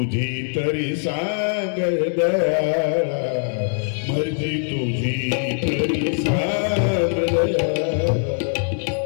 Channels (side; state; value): right; silent; digital silence